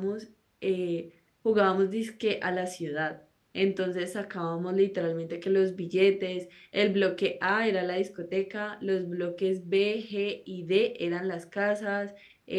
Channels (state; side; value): identical; both; correlation 1.00